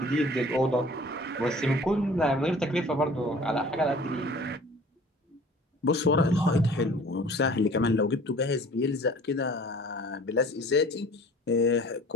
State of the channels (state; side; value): normal; both; correlation 0.47